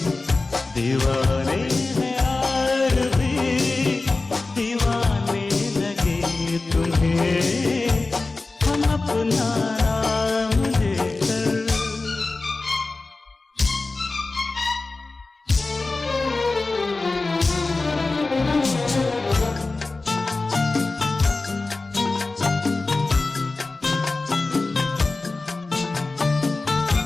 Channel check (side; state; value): right; quieter; 3.5 dB